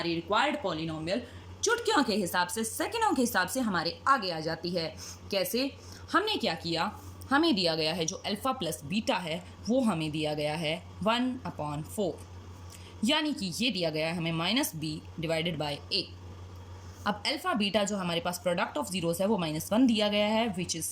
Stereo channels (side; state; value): both; identical; correlation 1.00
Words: रिक्वायर्ड पॉलिनोमियल चुटकियों के हिसाब से, सेकंडों के हिसाब से हमारे आगे आ जाती है। कैसे, हमने क्या किया, हमें दिया गया है जो अल्फ़ा प्लस बीटा है वो हमें दिया गया है 1/4, यानी कि ये दिया गया है हमें -b/a। अब अल्फ़ा बीटा जो हमारे पास प्रोडक्ट ऑफ जीरोज़ है वो -1 दिया गया है विच इज़